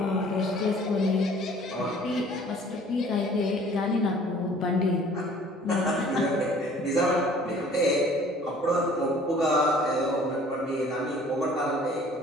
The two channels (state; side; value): normal; both; correlation 0.52